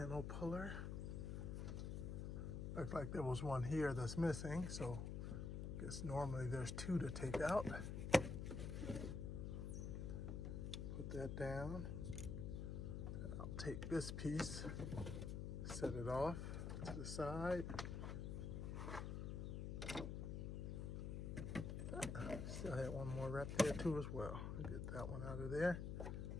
puller. Looks like there was one here that's missing, so I guess normally there's two to take out. Put that down. I'll take this piece, set it off to the side. Still had one more right there too as well. I'll get that one out of there.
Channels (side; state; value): left; noise; hum, 3 dB below the sound